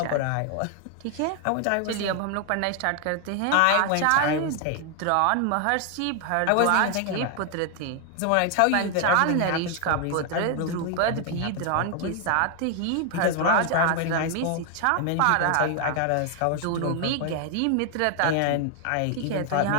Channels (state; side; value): different; both; correlation 0.00